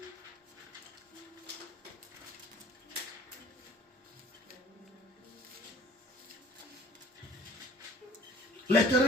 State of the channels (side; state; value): both; normal; correlation 0.52